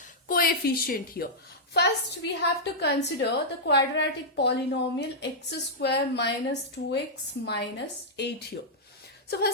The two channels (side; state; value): both; normal; correlation -0.08